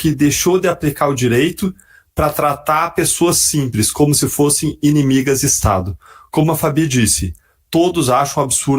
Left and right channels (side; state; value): both; identical; correlation 1.00